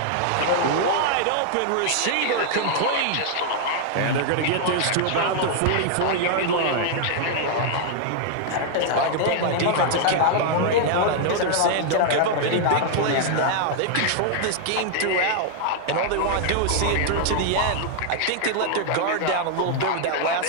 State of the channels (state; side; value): different; both; correlation -0.01